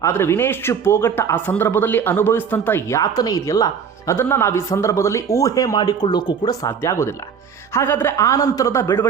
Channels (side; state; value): left; quieter; 6.9 dB